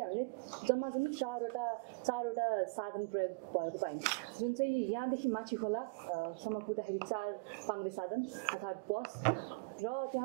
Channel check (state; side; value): quieter; left; 29.5 dB